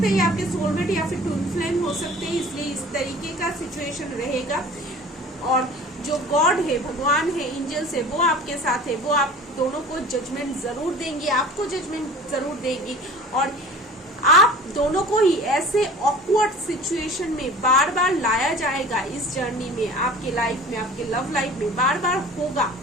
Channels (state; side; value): normal; both; correlation 0.42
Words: है आपके सोलमेट या फिर ट्विन फ्लेम हो सकते हैं, इसलिए इस तरीके का सिचुएशन रहेगा। और जो गॉड है, भगवान है, एंजल्स है, वो आपके साथ है, वो आप दोनों को जजमेंट जरूर देंगी, आपको जजमेंट जरूर देगी। और आप दोनों को ही ऐसे ऑकवर्ड सिचुएशन में बार बार लाया जाएगा इस जर्नी में, आपके लाइफ में, आपके लव लाइफ में बार बार होगा